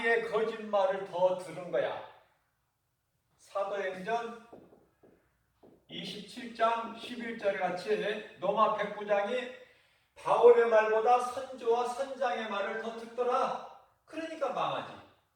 거짓말을 더 들은 거야. 사도행전 27장 11절에 같이 로마 백부장이 바울의 말보다 선조와 선장의 말을 더 듣더라. 그러니까 망하지.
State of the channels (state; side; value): identical; both; correlation 1.00